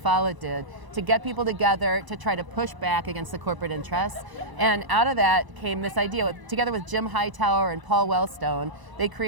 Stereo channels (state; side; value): late; left; 1.0 ms